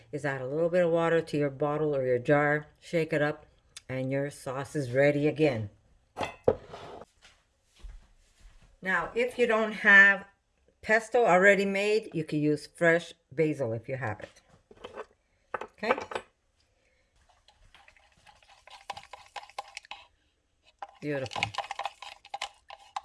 is add a little bit of water to your bottle or your jar. Shake it up. And your sauce is ready again. Now, if you don't have pesto already made, you can use fresh basil if you have it. Okay? Beautiful.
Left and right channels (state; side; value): identical; both; correlation 1.00